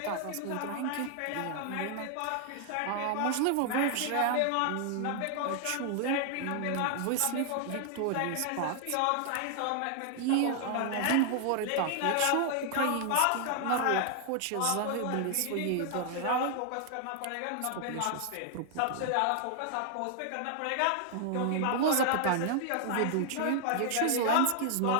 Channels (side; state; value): both; different; correlation 0.00